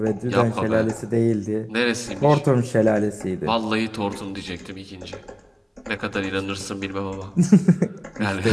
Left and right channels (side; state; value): both; identical; correlation 1.00